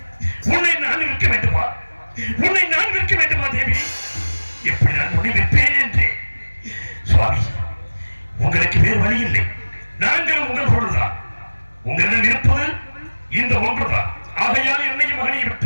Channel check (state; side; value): inverted; both; correlation -1.00